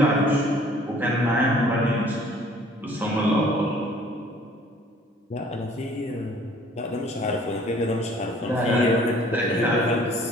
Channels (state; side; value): normal; both; correlation 0.54